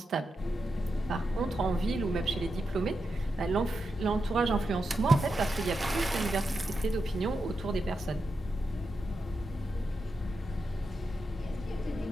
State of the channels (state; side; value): normal; both; correlation 0.87